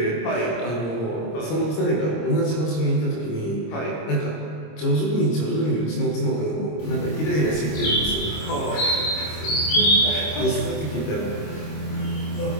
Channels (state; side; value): late; right; 26 ms